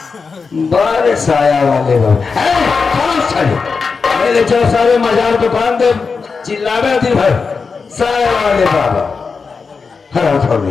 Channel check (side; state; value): right; quieter; 5.0 dB